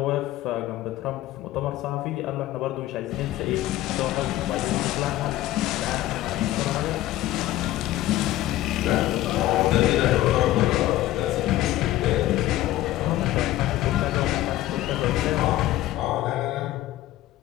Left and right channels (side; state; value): right; quieter; 15.0 dB